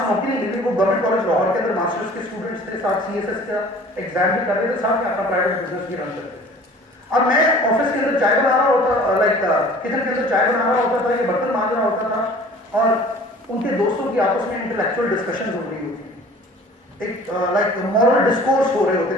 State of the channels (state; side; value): normal; both; correlation 0.47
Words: نوکری ملی وہ گورنمنٹ کالج لاہور کے اندر ماسٹرز کے اسٹوڈنٹس تھے, ساتھ سی ایس ایس کا ایگزام بھی کر رہے تھے, ساتھ میں اپنا پرائیویٹ بزنس بھی رن کرتے تھے. اب میں آفس کے اندر چائے بنا رہا ہوتا, لائک کچن کے اندر چائے بنا رہا ہوتا تھا, یہ برتن مانج رہا ہوتا تھا, اور ان کے دوستوں کی آپس میں انٹلیکچوئل ڈسکشنز ہو رہی ہوتی ہیں, ایک لائک مورل ڈسکورس ہو رہے ہوتے